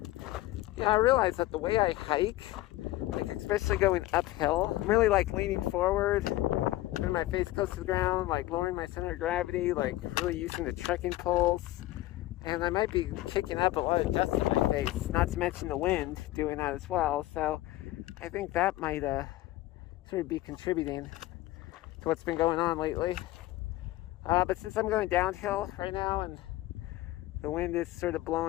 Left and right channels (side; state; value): right; quieter; 17.0 dB